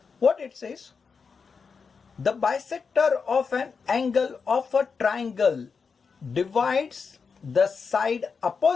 What it says? The bisector of an angle of a triangle divides the side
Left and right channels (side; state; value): right; quieter; 5.4 dB